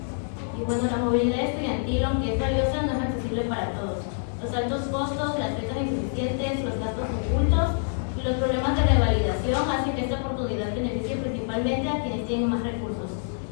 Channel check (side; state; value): right; silent; digital silence